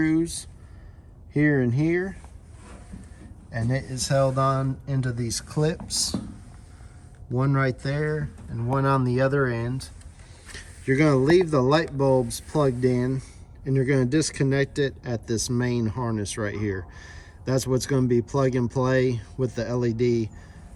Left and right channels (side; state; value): both; identical; correlation 1.00